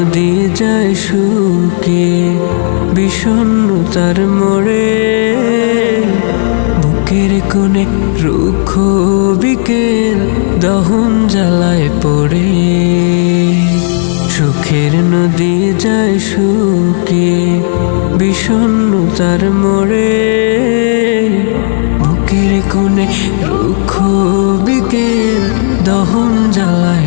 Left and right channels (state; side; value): silent; right; digital silence